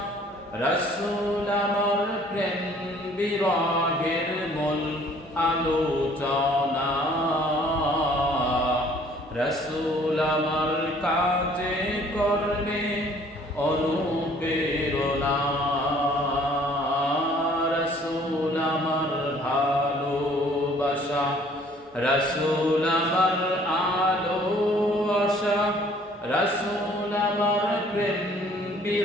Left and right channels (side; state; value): both; normal; correlation 0.57